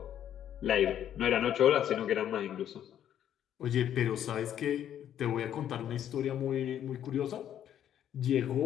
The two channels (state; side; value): quieter; right; 10.4 dB